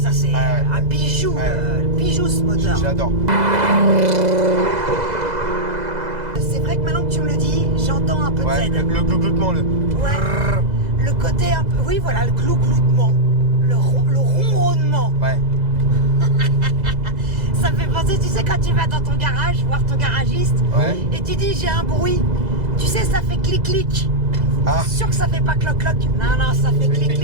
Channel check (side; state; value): left; late; 2.0 ms